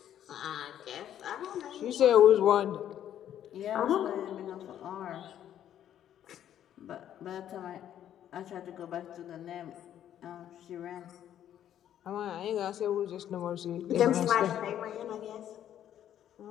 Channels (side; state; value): right; quieter; 10.7 dB